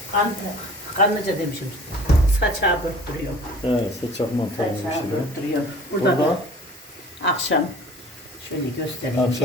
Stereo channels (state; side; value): normal; both; correlation 0.46